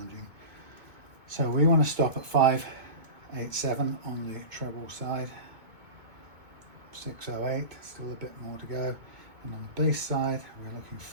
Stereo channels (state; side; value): late; left; 2.2 ms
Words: So we want to stop at 5.87 on the treble side. 6.08, still a bit more to go. And on the bass side, we're looking